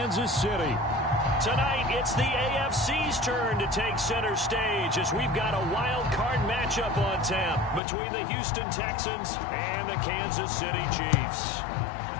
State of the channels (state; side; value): drops out; right; at 7.8 s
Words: City. Tonight, it's the AFC's turn to take center stage as we've got a wild card matchup on tap between the Houston Texans and the Kansas City Chiefs.